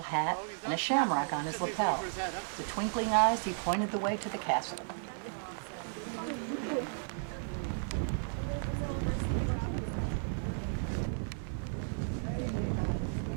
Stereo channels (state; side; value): silent; left; digital silence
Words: hat, and a shamrock on his lapel. With twinkling eyes, he pointed the way to the castle.